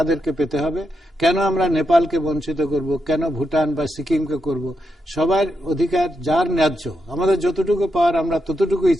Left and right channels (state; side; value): normal; both; correlation 0.84